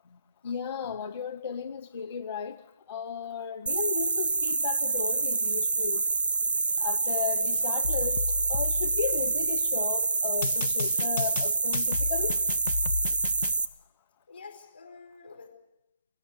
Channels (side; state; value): both; inverted; correlation -0.73